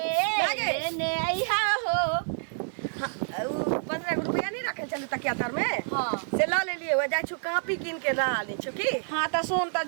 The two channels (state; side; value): silent; left; 59 dB below the other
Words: लेने आई हो। 15 रुपया नहीं रखे चले तकिया तर में हाँ से ला ले लिए हो जाय छु कॉपी किन के ला ले छु की। हाँ तो सुन तो